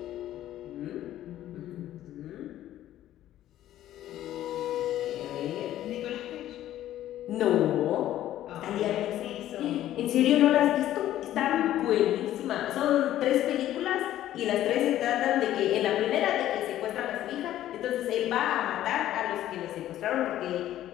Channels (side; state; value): right; quieter; 13.0 dB